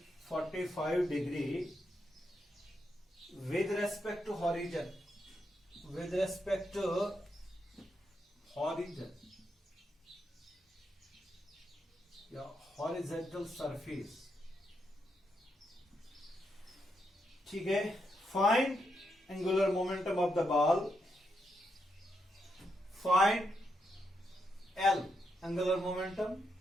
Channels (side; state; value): both; normal; correlation 0.82